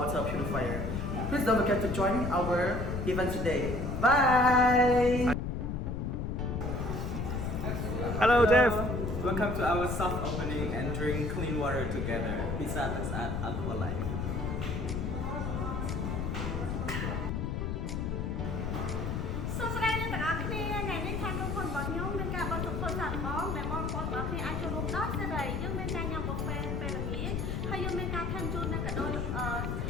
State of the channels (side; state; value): left; noise; rumble, 2 dB below the sound